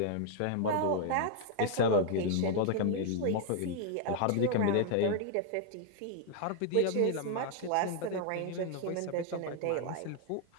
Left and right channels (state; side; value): different; both; correlation 0.00